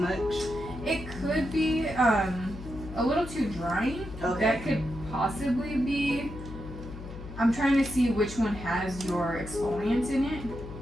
It could be a little too drying. Okay. That could possibly be. I'm trying to see which one has your exfoliants in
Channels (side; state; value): left; noise; hum, 12 dB below the sound